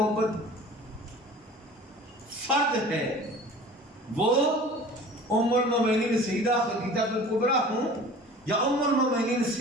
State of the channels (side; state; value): both; normal; correlation 0.43